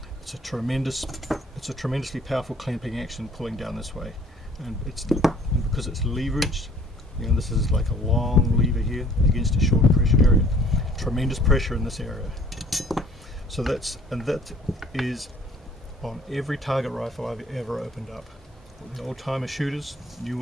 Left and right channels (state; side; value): normal; both; correlation 0.55